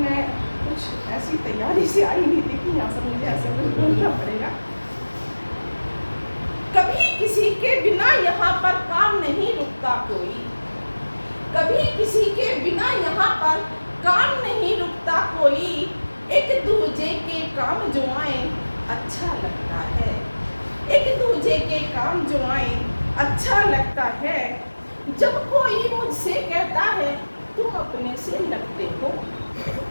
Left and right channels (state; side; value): inverted; both; correlation -1.00